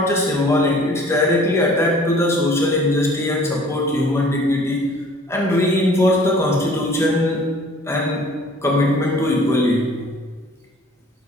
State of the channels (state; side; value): normal; both; correlation 0.51